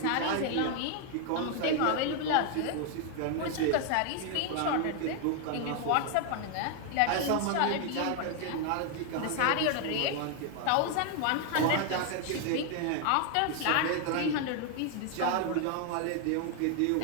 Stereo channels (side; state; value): both; different; correlation 0.00